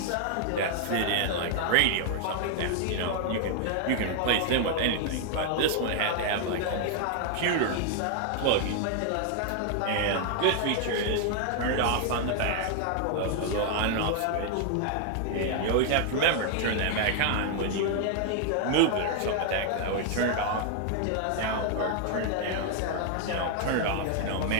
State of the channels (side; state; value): both; different; correlation 0.00